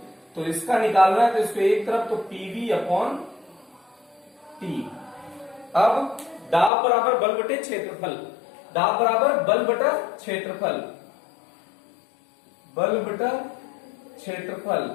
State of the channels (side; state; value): right; drops out; at 6.7 s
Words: तो इसका निकालना है, तो इसको एक तरफ, तो पीवी अपॉन टी। अब दाब बराबर बल बटे क्षेत्रफल, दाब बराबर बल बटा क्षेत्रफल, बल बटा क्षेत्रफल